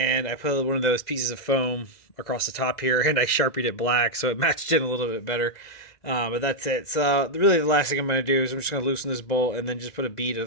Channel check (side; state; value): right; late; 2.0 ms